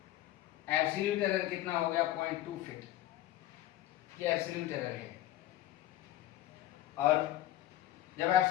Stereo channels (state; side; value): quieter; right; 14.1 dB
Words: एब्सोल्यूट एरर कितना हो गया 0.2 फीट, ये एब्सोल्यूट एरर है। और जब